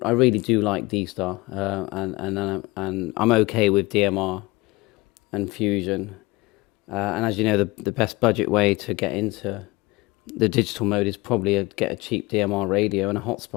really do like D-Star, and I'm okay with DMR and Fusion. And as you know, the best budget way to get into the digital mode is probably get a cheap DMR radio and a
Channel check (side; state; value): right; quieter; 22.5 dB